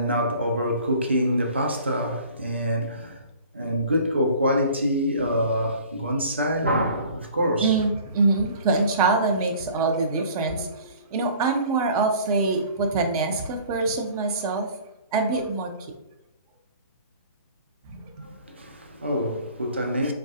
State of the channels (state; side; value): inverted; both; correlation -0.48